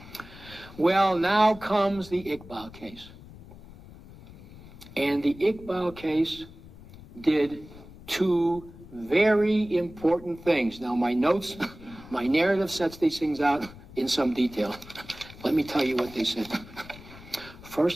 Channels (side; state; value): left; noise; rumble, 18 dB below the sound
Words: Well, now comes the Iqbal case. And the Iqbal case did two very important things. Now, my notes, my narrative sets these things out in some detail. Let me tell you what they said.